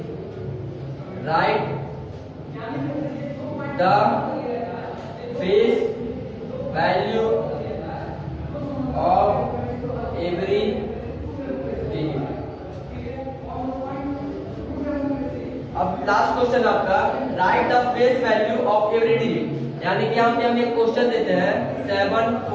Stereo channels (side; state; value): both; identical; correlation 1.00